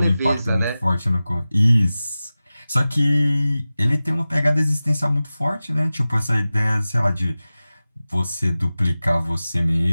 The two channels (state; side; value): inverted; both; correlation -0.96